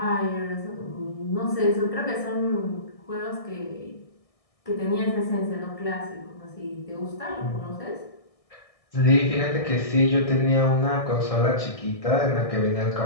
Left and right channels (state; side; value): late; right; 1.6 ms